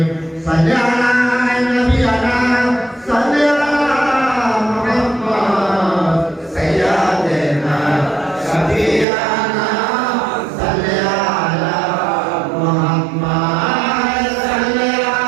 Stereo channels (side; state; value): left; drops out; at 9.1 s